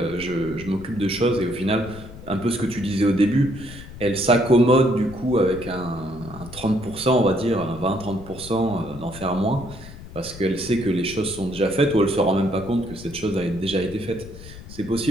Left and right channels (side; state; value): left; noise; rumble, 15 dB below the sound